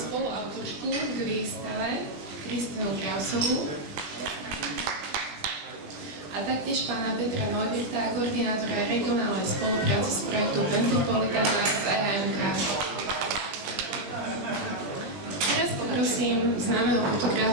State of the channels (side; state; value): left; late; 20 ms